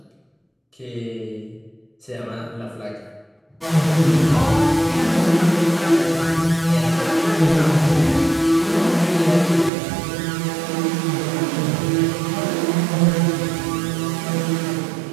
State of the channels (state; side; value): drops out; left; at 9.7 s